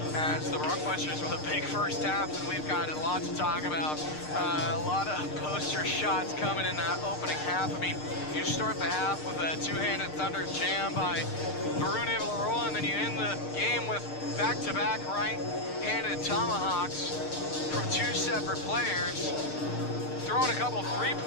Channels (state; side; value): late; right; 6.6 ms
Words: As the Bronquisters with a big first half, and we've got a lot to talk about. A lot of poster shots coming in that opening half. I mean, you start the half with a two-handed thunder jam by Varun Ivalaroa, and then you end the game with back-to-back right-handed tomahawks from two separate players, throwing a couple